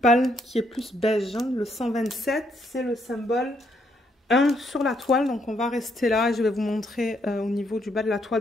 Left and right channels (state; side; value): normal; both; correlation 0.73